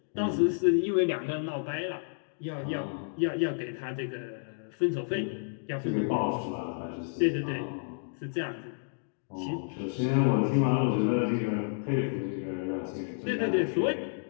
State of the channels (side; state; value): right; silent; digital silence